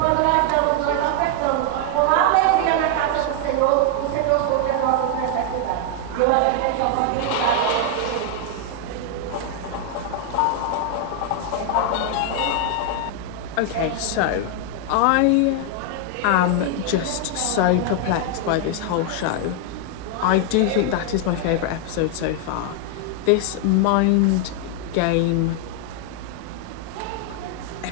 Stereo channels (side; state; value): both; different; correlation 0.00